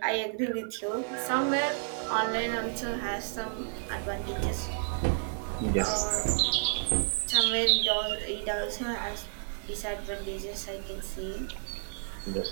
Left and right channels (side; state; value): left; silent; digital silence